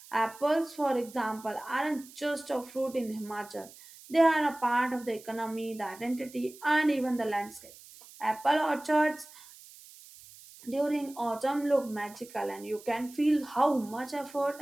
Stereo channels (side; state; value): right; noise; hiss, 20 dB below the sound